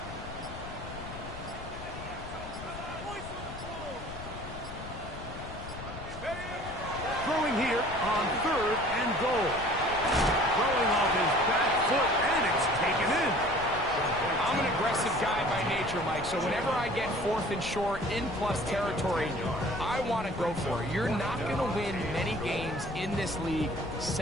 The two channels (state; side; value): noise; left; rumble, 12 dB below the sound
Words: Throwing here on third and goal. Throwing off his back foot, and it's taken in. I'm an aggressive guy by nature, Mike, so whenever I get fourth and short in plus territory, I want to go for it. You're not going to win many games in this league